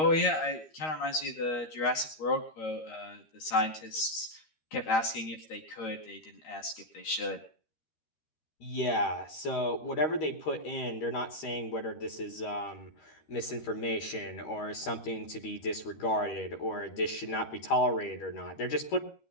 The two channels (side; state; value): right; late; 13 ms